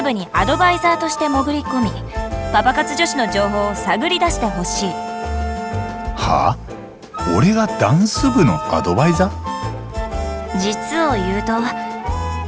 部にアドバイザーとして潜り込み、パパ活女子の情報を探り出してほしい。はあ？俺がダンス部のアドバイザー？実を言うと、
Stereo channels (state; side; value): identical; both; correlation 1.00